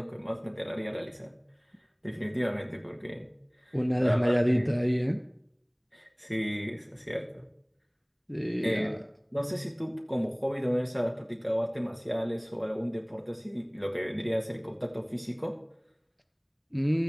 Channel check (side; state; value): both; identical; correlation 1.00